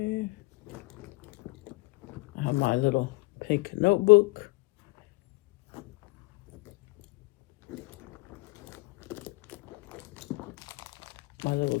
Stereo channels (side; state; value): right; quieter; 24.1 dB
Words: I have my little pink notebook. My little